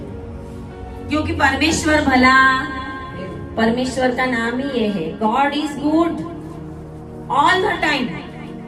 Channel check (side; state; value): both; identical; correlation 1.00